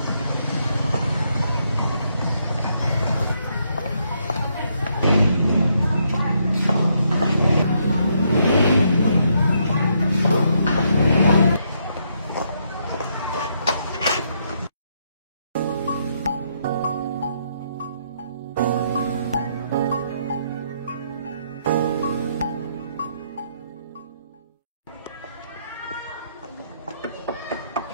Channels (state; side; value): inverted; both; correlation -0.75